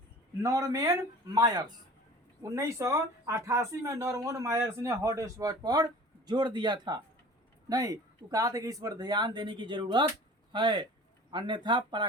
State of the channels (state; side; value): normal; both; correlation 0.43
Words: नॉर्मन मायर्स। 1988 में नॉर्मन मायर्स ने हॉट स्पॉट पर जोर दिया था। नहीं, वो कहा था कि इस पर ध्यान देने की जरूरत है, अन्यथा